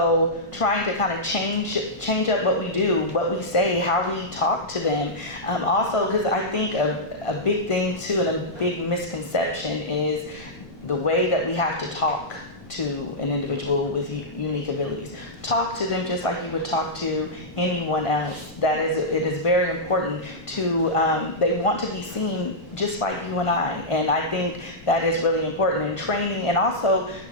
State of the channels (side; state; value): left; noise; rumble, 21 dB below the sound